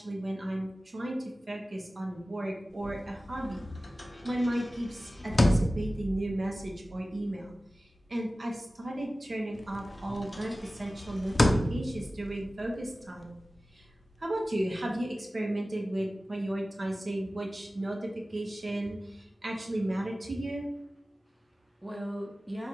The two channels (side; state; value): both; normal; correlation 0.96